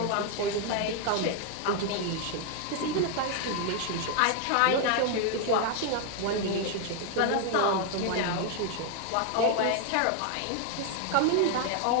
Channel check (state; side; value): different; both; correlation 0.01